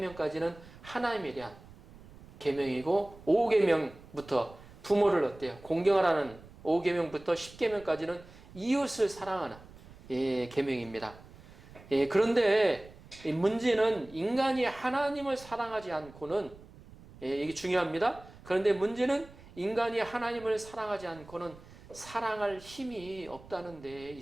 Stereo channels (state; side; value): noise; right; rumble, 20 dB below the sound